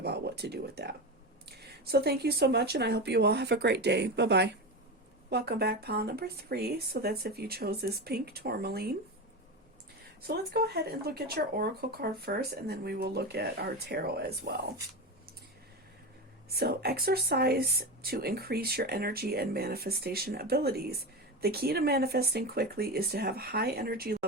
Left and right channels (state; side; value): normal; both; correlation 0.21